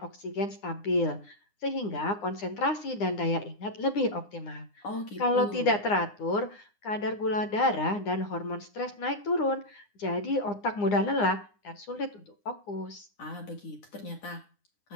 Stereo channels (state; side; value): late; right; 9.8 ms